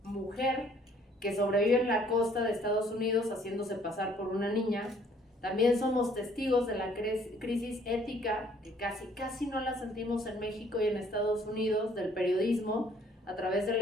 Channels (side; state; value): both; normal; correlation 0.61